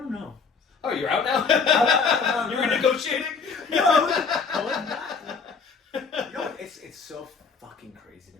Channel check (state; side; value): quieter; right; 5.3 dB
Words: know. Oh, you're out now? You were negotiating? No, it's so fucking crazy to